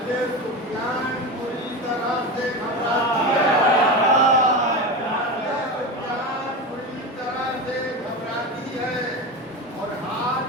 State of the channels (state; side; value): normal; both; correlation 0.22